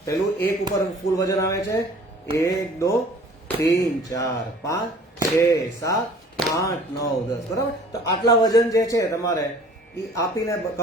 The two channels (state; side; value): normal; both; correlation 0.50